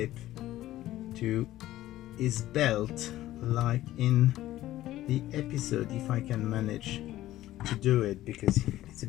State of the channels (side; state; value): right; quieter; 14.7 dB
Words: to his belt like in the episode, if I can manage to do it, because it's a